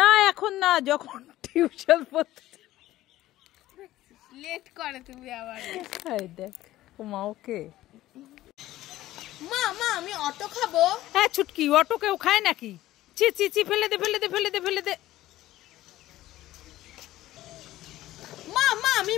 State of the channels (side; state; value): right; quieter; 15.3 dB